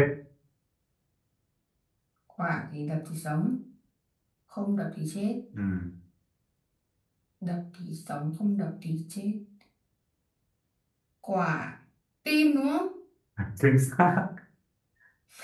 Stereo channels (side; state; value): both; identical; correlation 1.00